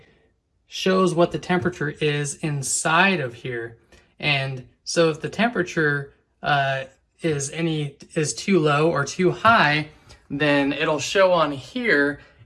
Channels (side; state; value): both; identical; correlation 1.00